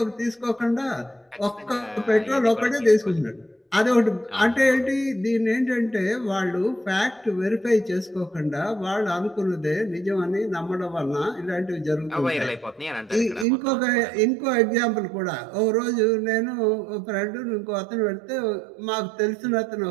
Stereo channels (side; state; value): left; drops out; at 13.5 s